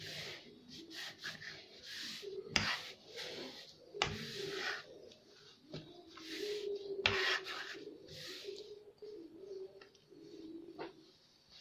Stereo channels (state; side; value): identical; both; correlation 1.00